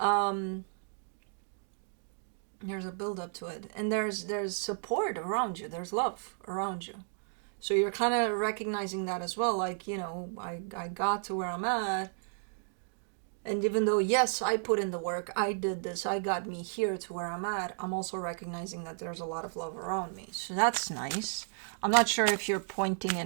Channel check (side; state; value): left; silent; digital silence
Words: a build up to it, and there's support around you, there's love around you, so you're kind of recognizing that as well, like, you know, I got to where I'm at. And even though, yes, I put in the work, I did this, I got me here to where I'm at, I'm also recognizing that there's a lot of love around me. So that's nice. I'm not sure if you're pointing